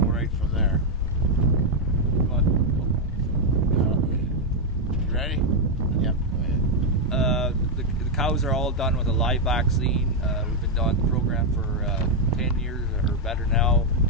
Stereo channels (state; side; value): normal; both; correlation 0.01